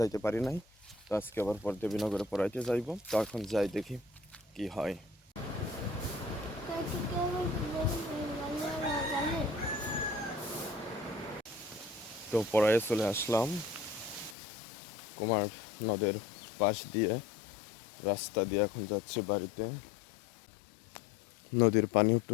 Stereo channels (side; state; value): right; drops out; at 14.4 s